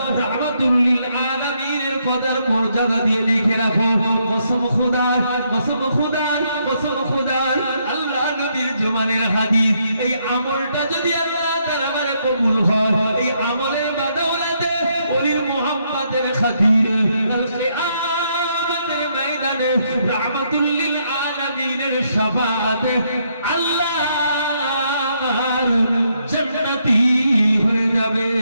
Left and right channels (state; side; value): inverted; both; correlation -0.75